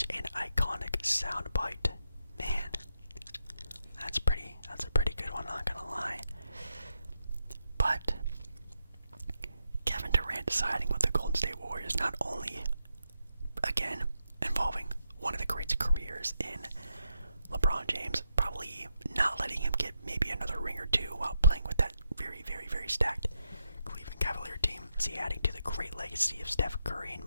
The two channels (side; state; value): both; inverted; correlation -0.83